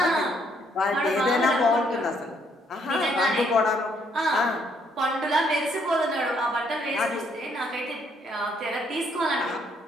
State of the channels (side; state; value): both; normal; correlation 0.69